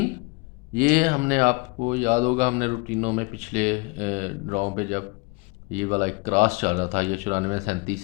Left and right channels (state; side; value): quieter; right; 27.2 dB